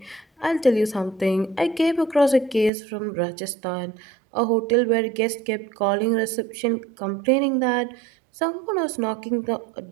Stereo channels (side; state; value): left; drops out; at 2.7 s